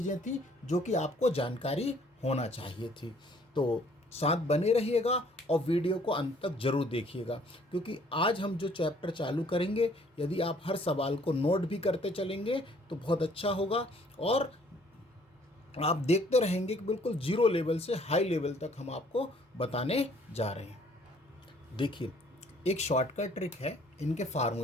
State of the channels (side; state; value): both; normal; correlation 0.60